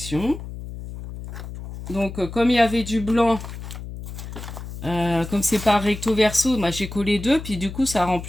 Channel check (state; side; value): noise; left; hum, 10 dB below the sound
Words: Donc comme il y avait du blanc, comme c'est pas recto verso, moi j'ai collé deux, puis du coup ça rend